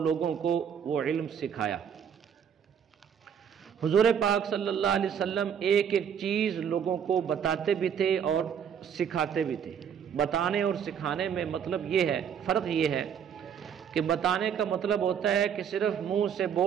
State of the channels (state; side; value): quieter; left; 8.0 dB